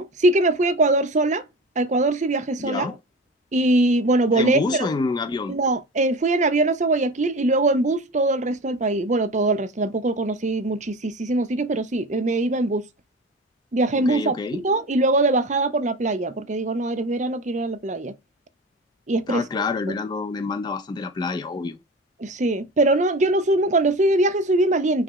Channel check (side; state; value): both; normal; correlation 0.32